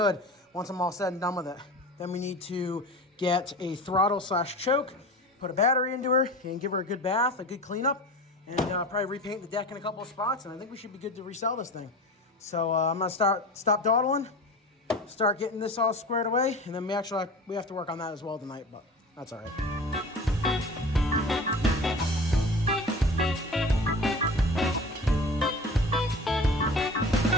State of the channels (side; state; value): both; normal; correlation 0.35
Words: once I'm all said and done with it. Then we need to get a throttle/choke, put a battery into her, and give her a good bath, a good cleanup, and probably repaint the deck in a couple of spots, and I think we should be good to resell this thing. So I'm gonna stop dawdling, start getting this all squared away, and then we have to work on that as well tonight, but that's all right.